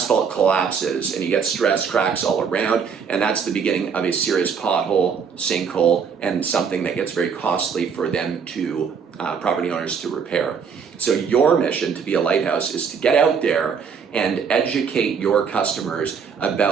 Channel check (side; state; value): left; quieter; 6.4 dB